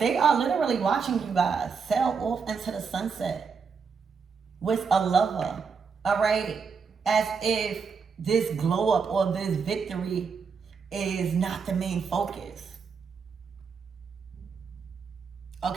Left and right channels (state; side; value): quieter; left; 5.7 dB